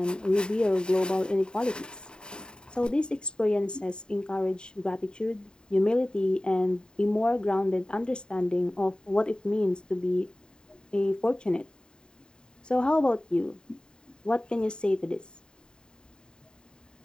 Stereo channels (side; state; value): right; late; 0.048 ms